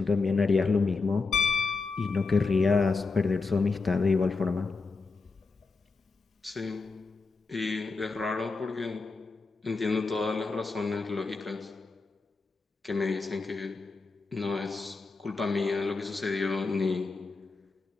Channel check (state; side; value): quieter; right; 4.1 dB